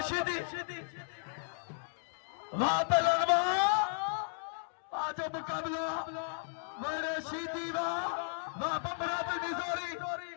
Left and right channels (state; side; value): silent; right; digital silence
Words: शीदी वाह पहलवान वाह जो मुकाबला मेरे शीदी वाह बबरा भी मिजोरी